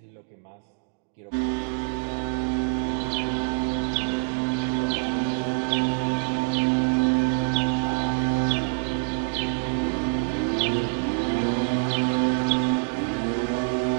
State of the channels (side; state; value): left; silent; digital silence